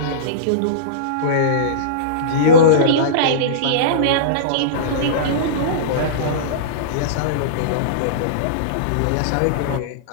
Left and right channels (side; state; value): both; different; correlation -0.04